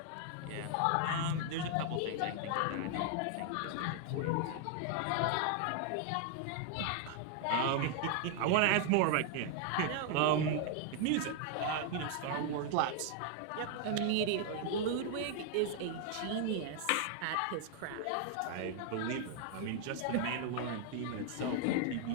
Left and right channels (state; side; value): different; both; correlation 0.00